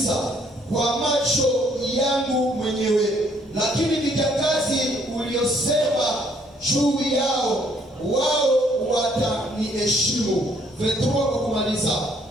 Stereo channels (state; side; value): normal; both; correlation 0.65